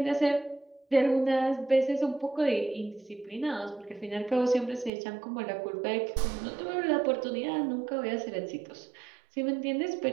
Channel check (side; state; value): left; drops out; at 4.9 s